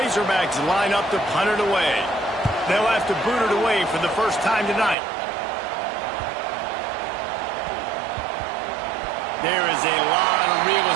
line up to punt it away. They'll have to boot it away for the first time tonight. There is a lot of real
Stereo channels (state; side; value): drops out; left; at 5.0 s